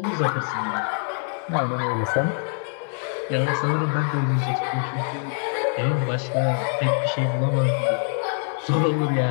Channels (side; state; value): right; silent; 62 dB below the other